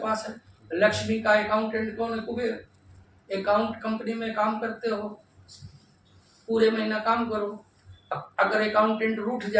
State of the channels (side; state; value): both; identical; correlation 1.00